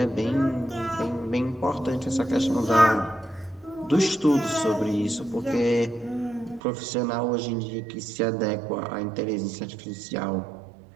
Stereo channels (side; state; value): left; drops out; at 6.6 s